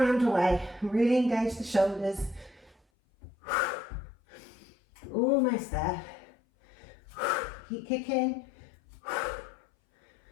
away. Really engage the shoulders. Almost there. Keep kicking.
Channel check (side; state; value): right; drops out; at 2.8 s